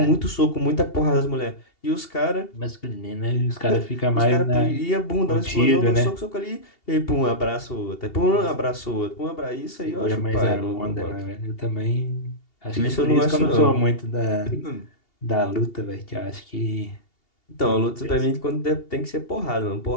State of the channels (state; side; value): late; right; 2.8 ms